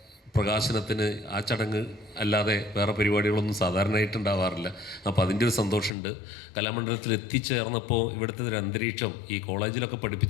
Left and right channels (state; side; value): drops out; right; at 5.9 s